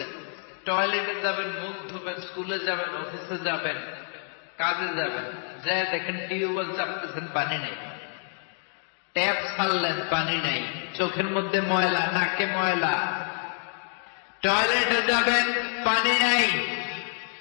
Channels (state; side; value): silent; right; 60 dB below the other